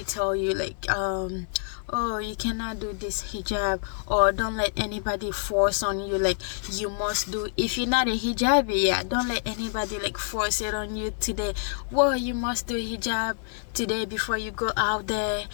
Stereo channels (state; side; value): silent; right; digital silence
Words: tell you like oh, you cannot do this hijab, or don't let anybody force on you like you must do. If you're not a hijabi, yeah, don't let anybody like force it on you today. Well, you must do hijab today before you go out there.